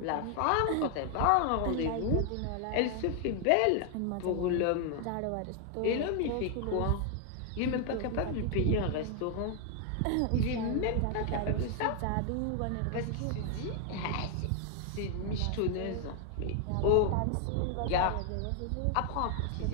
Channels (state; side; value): different; both; correlation 0.00